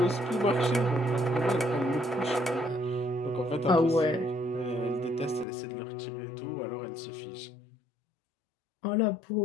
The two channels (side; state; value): right; drops out; at 5.5 s